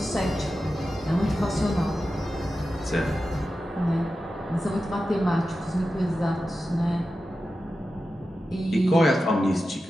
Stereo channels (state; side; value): normal; both; correlation 0.92